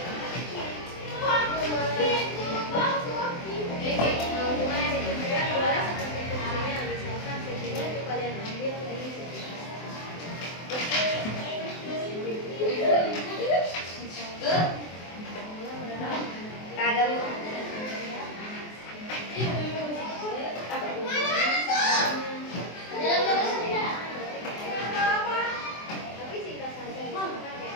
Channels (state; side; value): late; right; 23 ms